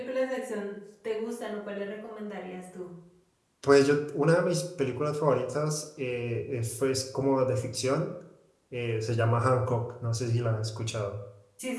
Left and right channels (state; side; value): identical; both; correlation 1.00